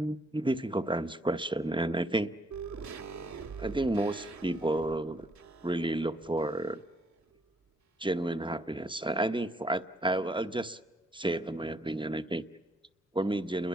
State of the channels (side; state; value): both; normal; correlation 0.68